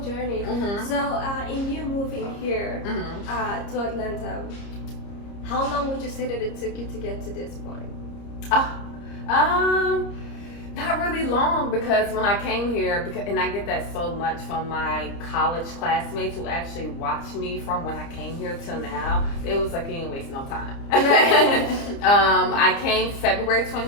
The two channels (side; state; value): right; late; 30 ms